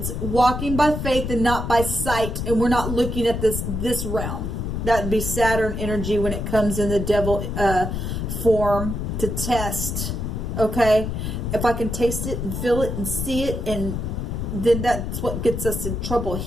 Walking by faith and not by sight. And we're not looking at this realm. That would be Saturn energy when it comes in the devil form to test. Okay? If I can taste it and feel it and see it, and then that's what gets us in trouble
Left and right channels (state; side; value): noise; left; rumble, 3 dB below the sound